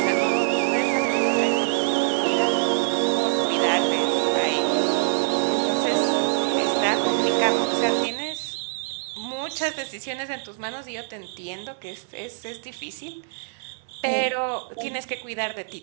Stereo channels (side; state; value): left; silent; digital silence